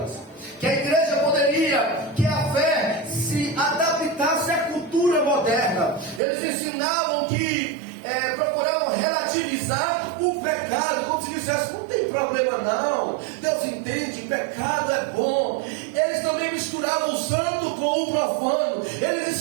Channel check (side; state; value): left; drops out; at 6.2 s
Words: que a igreja poderia, que a fé se adaptasse à cultura moderna. Eles ensinavam que procuravam relativizar o pecado, como se dissesse, não tem problema não, Deus entende, pecado é bom. Eles também misturavam o santo com o profano, eles